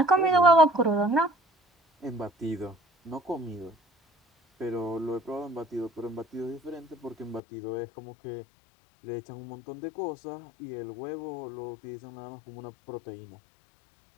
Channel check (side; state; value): right; drops out; at 7.4 s